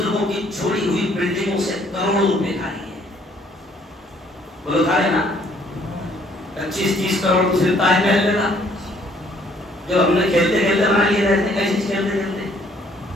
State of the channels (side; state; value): both; normal; correlation 0.63